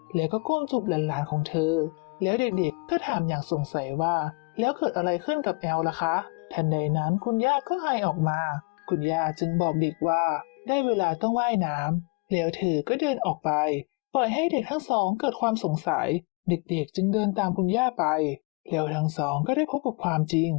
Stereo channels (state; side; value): quieter; right; 31.1 dB